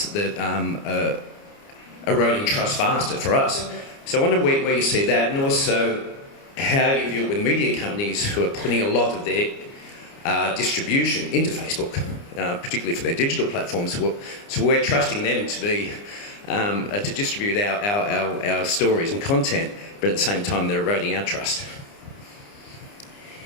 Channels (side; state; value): right; late; 29 ms